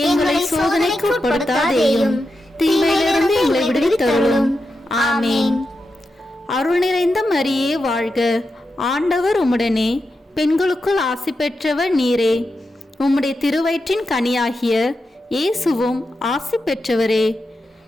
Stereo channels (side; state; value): both; normal; correlation 0.88